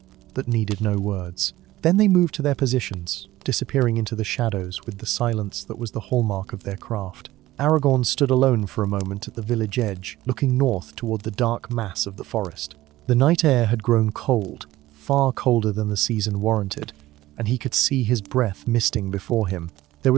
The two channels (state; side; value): quieter; left; 16.4 dB